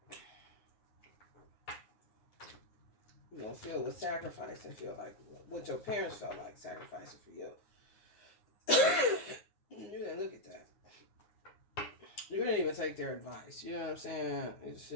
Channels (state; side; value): late; right; 9.7 ms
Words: going to feel what sacrificing feel like, what your parents felt like sacrificing for you. You didn't look at that. You didn't even take their advice. You know what I'm saying? It's